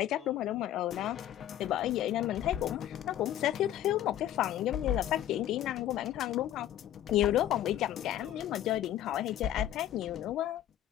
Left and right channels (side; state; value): right; quieter; 12.3 dB